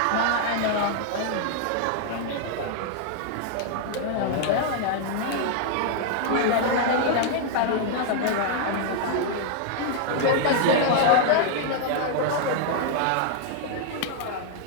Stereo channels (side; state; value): both; different; correlation 0.00